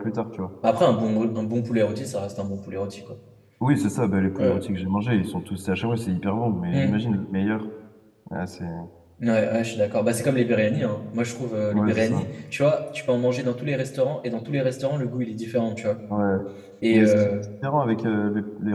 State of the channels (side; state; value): both; identical; correlation 1.00